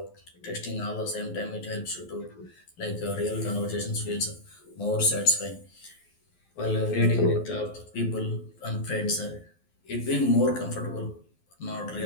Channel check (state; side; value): late; right; 12 ms